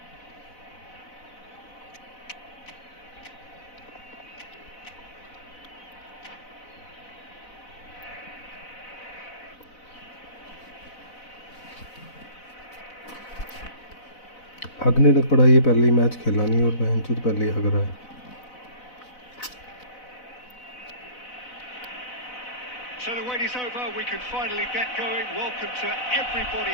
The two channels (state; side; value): late; right; 4.0 ms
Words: हगने लग पड़ा ये पहले ही मैच खेला नहीं और बहन चोद पहले ही हग रहा है So the wait is over, we can finally get going. Welcome to everybody